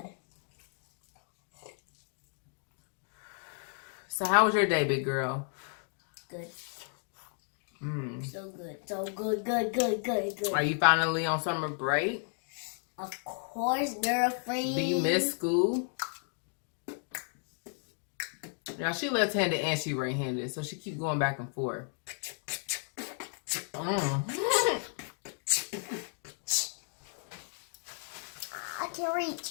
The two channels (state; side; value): silent; right; 55 dB below the other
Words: So how was your day, big girl? Good. So good. So good. Are you finally on summer break? Of course, girlfriend. Do you miss school? Now she left-handed and she right-handed, so she keeps going back and forth. I can't